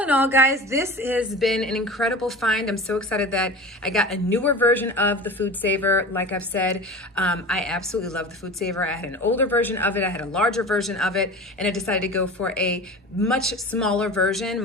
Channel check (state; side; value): normal; both; correlation 0.34